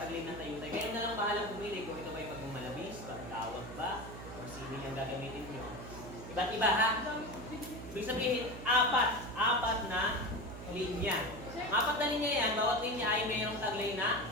ng tayutay. Kayo na lang bahalang pumili kung ito ba ay pagmamalabis, pagtawag ba, o kung sino yung gagamitin nyo. Iba't iba ha? Ibig sabihin, apat na linya. Apat na linya yan, bawat linya ay mayroong taglay na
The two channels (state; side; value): noise; right; hum, 11 dB below the sound